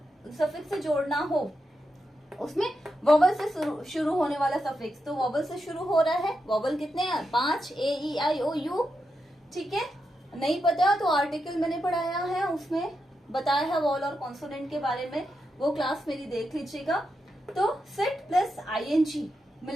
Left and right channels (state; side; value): normal; both; correlation 0.86